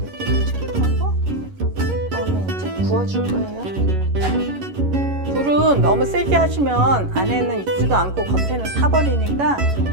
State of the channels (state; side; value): late; left; 11 ms